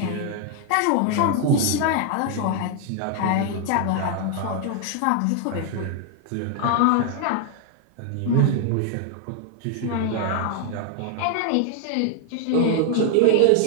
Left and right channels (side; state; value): both; different; correlation 0.00